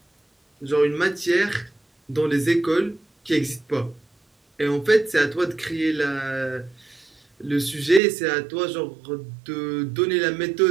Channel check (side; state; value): left; drops out; at 8.0 s